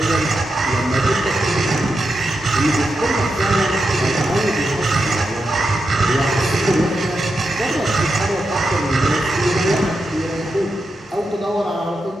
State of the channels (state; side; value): normal; both; correlation 0.87